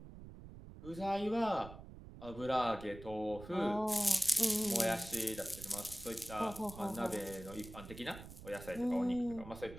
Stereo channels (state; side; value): noise; right; rumble, 14 dB below the sound